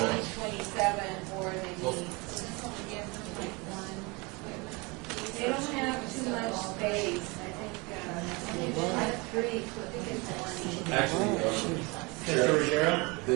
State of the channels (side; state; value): left; quieter; 27.1 dB